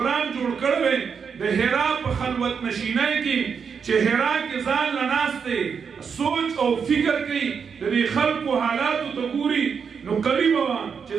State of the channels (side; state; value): left; quieter; 6.3 dB